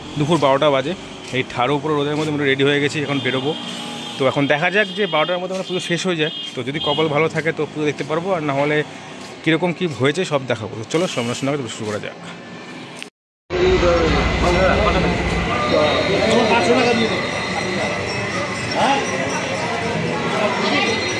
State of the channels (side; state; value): both; identical; correlation 1.00